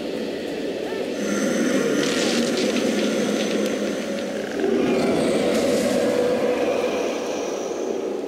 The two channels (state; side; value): identical; both; correlation 1.00